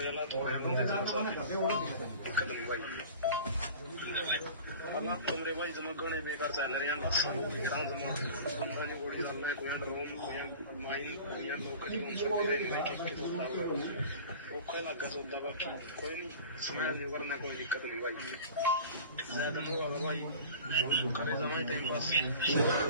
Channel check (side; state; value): both; inverted; correlation -0.40